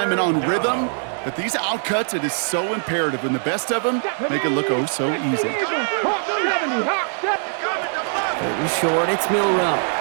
and on rhythm, but these outcuts, it is so imperative, and the best of them make it look oh so easy. 3rd and short, it's Milrow.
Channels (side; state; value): left; silent; 61 dB below the other